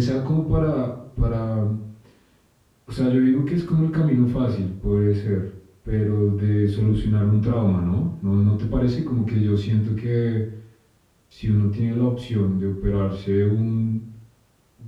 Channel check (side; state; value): both; identical; correlation 1.00